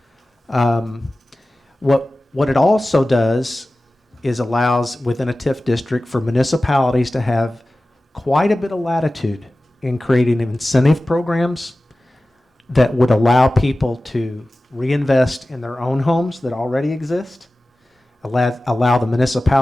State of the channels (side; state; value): both; normal; correlation 0.96